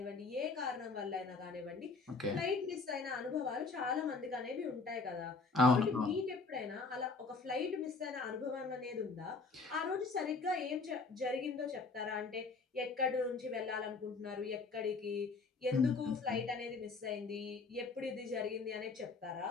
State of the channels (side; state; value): right; quieter; 4.2 dB